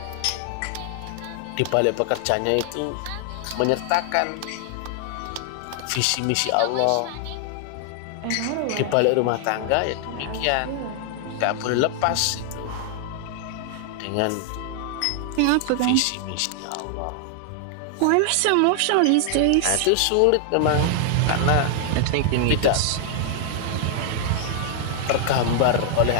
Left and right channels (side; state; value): both; different; correlation 0.00